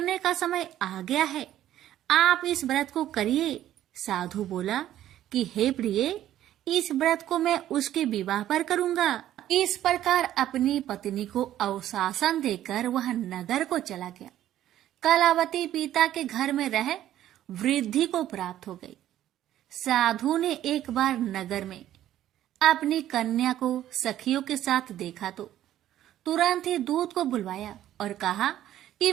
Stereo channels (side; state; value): left; quieter; 12.5 dB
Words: का समय आ गया है। आप इस व्रत को करिए। साधु बोला कि हे प्रिय, इस व्रत को मैं उसके विवाह पर करूंगा। इस प्रकार अपनी पत्नी को अवशासन देकर वह नगर को चला गया। कलावती पिता के घर में रह वृद्धि को प्राप्त हो गई। साधु ने एक बार नगर में अपनी कन्या को सखियों के साथ देखा तो तुरंत ही दूत को बुलवाया और कहा कि